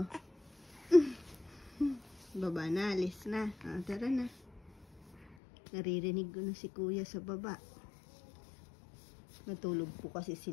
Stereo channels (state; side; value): drops out; right; at 5.4 s